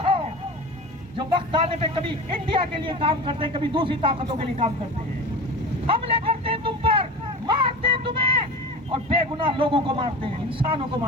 ہو جو وقت آنے پہ کبھی انڈیا کے لیے کام کرتے ہیں، کبھی دوسری طاقتوں کے لیے کام کرتے ہیں، حملے کرتے ہیں تم پر، مارتے ہیں تمہیں، اور بے گناہ لوگوں کو مارتے ہیں، انسانوں کو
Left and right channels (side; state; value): both; normal; correlation 0.31